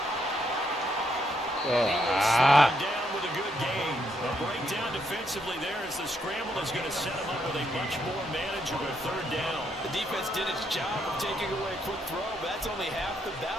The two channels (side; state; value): both; normal; correlation 0.76